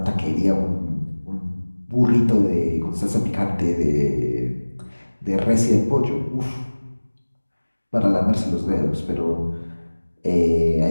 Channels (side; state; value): both; inverted; correlation -1.00